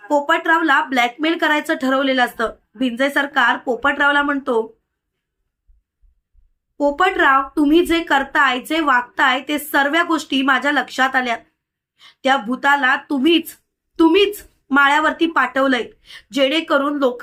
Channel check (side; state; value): both; identical; correlation 1.00